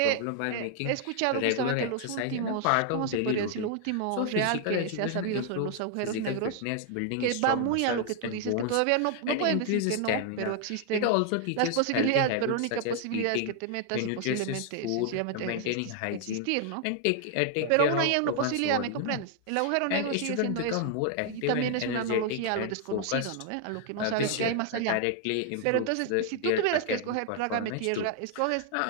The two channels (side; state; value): both; different; correlation 0.00